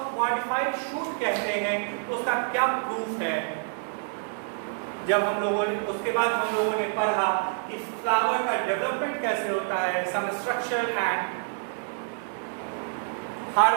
मॉडिफाइड शूट कहते हैं, तो उसका क्या प्रूफ है। जब हम लोगों ने उसके बाद हम लोगों ने पढ़ा कि फ्लावर का डेवलपमेंट कैसे होता है, some structure and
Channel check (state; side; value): silent; left; digital silence